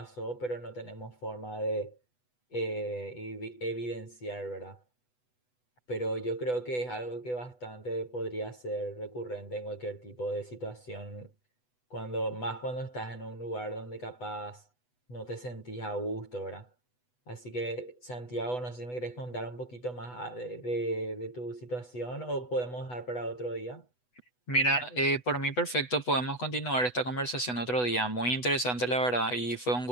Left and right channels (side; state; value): right; late; 8.1 ms